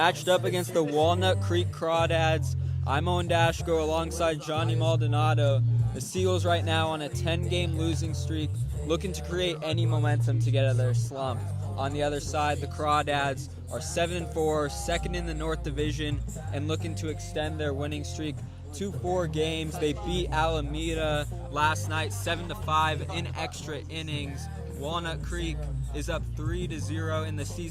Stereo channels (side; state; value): both; identical; correlation 1.00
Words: up against the Walnut Creek Crawdads. I'm Owen Daszko alongside Johnny Maldonado. The Seagulls right now on a 10-game losing streak, looking to create any momentum to get out of their slump. On the other side, the Crawdads are 7-4, second in the North Division, and looking to extend their winning streak to 4 games. They beat Alameda last night 7-5 in extra innings. Walnut Creek is up 3-0 in the